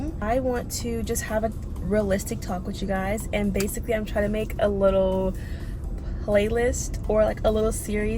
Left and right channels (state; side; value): identical; both; correlation 1.00